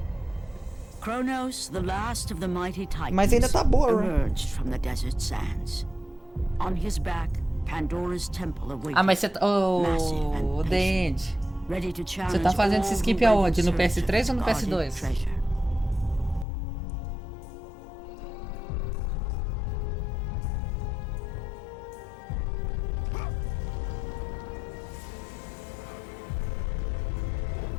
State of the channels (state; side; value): drops out; right; at 16.4 s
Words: Kronos, the last of the mighty Titans, Mas ainda tá boa, né? emerged from the desert sands. On his back, Pandora's temple awaits. Ah, mas você tá... Oh, Dende. Você tá fazendo esse skip aonde? No PS3 ou no PS2?